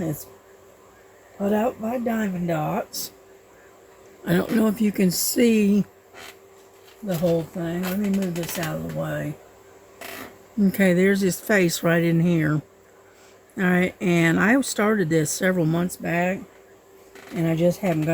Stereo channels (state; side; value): identical; both; correlation 1.00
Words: It's put out by Diamond Dots. I don't know if you can see the whole thing. Let me move this out of the way. Okay, there's his face right in here. All right, and I started this several months back, and I just haven't